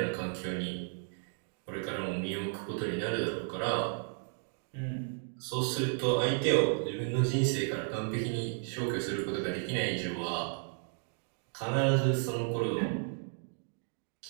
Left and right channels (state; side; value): silent; left; 55 dB below the other